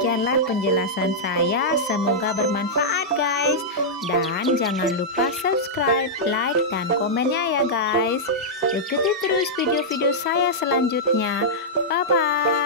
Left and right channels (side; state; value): both; normal; correlation -0.09